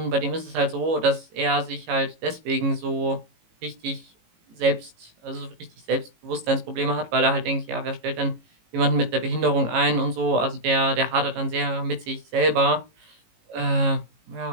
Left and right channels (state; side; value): late; left; 18 ms